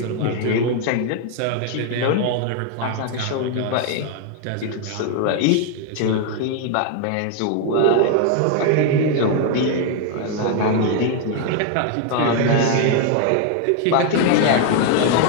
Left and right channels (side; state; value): both; different; correlation 0.00